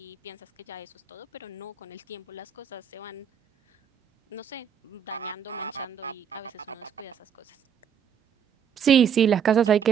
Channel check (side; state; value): left; quieter; 7.8 dB